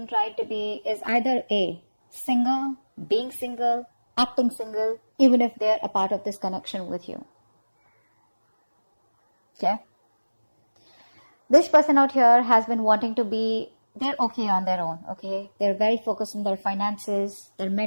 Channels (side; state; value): both; inverted; correlation -1.00